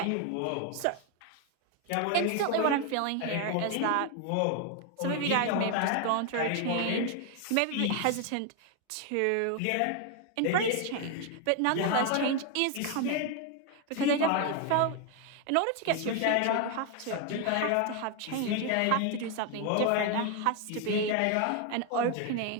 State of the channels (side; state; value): both; different; correlation 0.01